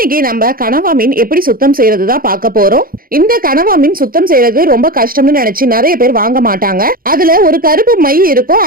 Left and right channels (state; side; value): late; left; 0.42 ms